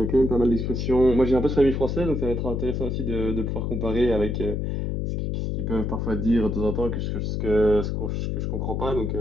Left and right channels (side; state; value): left; noise; hum, 1 dB below the sound